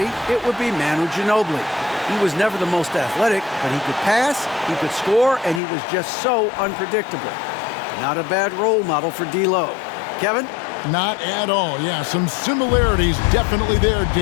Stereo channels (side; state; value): right; drops out; at 5.6 s